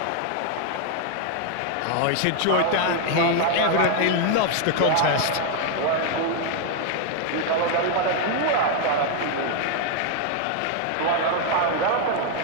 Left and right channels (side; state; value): both; different; correlation 0.00